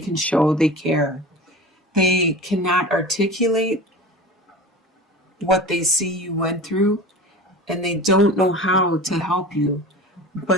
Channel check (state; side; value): normal; both; correlation 0.35